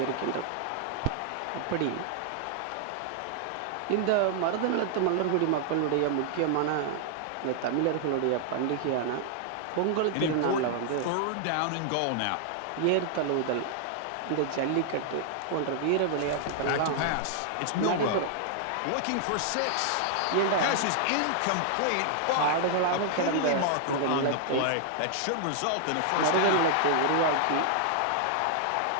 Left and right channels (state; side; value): different; both; correlation -0.01